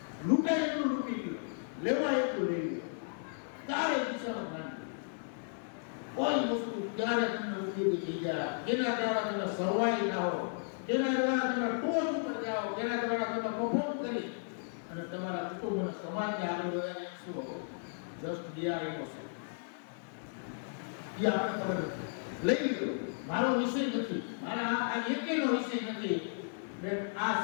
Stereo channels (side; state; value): right; silent; digital silence